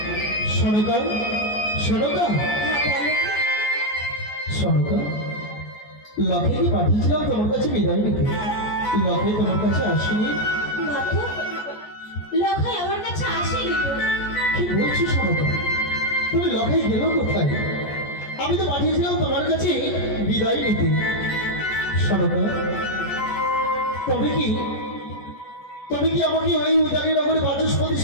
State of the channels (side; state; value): right; late; 14 ms